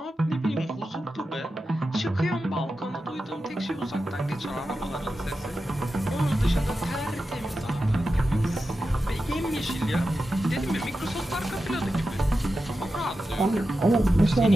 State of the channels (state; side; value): normal; both; correlation 0.91